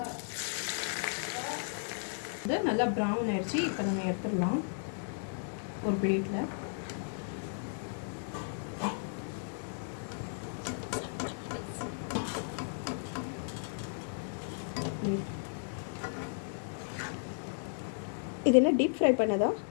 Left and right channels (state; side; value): silent; right; digital silence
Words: இது நல்லா ப்ரௌன் ஆயிடுச்சு. இப்போ நம்ம எடுத்துடலாம் ஒரு பிளேட்டில். இது என்ன டீப் ஃப்ரை பண்ணதா?